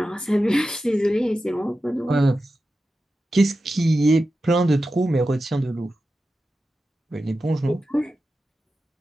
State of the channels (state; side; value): normal; both; correlation 0.92